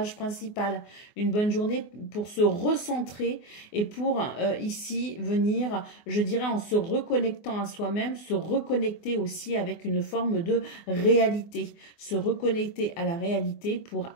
principal, une bonne journée pour se recentrer et pour ici venir, je dirais en se reconnectant à soi-même, se reconnecter aussi avec une forme de réalité, se reconnecter à la réalité pour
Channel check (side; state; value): right; late; 24 ms